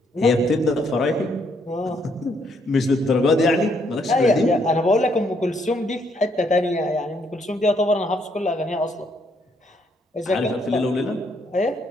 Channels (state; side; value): normal; both; correlation 0.71